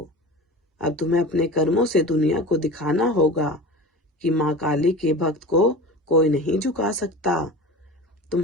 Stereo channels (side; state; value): both; normal; correlation 0.34